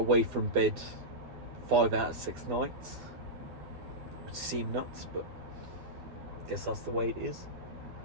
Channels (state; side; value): late; left; 10 ms